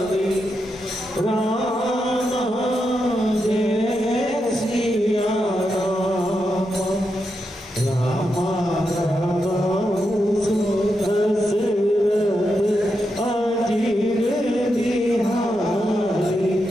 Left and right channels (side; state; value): both; normal; correlation 0.85